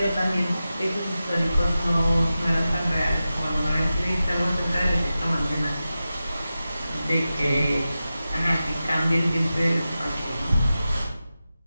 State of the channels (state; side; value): inverted; both; correlation -0.93